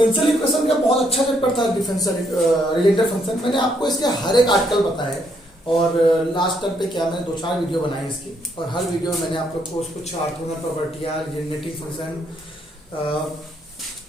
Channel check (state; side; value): normal; both; correlation 0.73